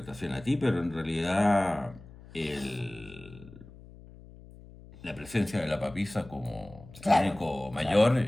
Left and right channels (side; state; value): left; noise; hum, 19 dB below the sound